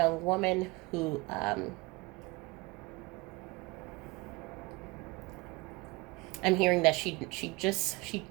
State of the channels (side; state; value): left; quieter; 23.9 dB